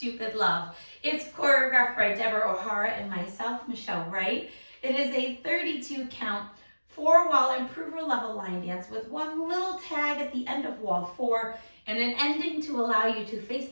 Love. It's choreographed by Deborah O'Hara and myself, Michelle Wright. It is a 32 count, 4-wall improver level line dance with one little tag at the end of wall 4 and an ending to allow you to face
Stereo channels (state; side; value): inverted; both; correlation -1.00